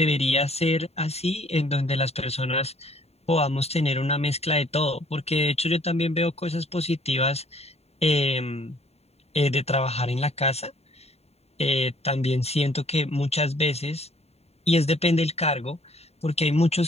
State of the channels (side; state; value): right; late; 0.30 ms